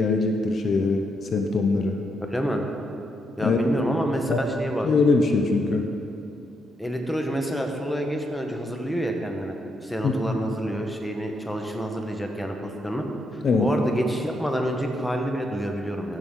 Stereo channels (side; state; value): both; normal; correlation 0.79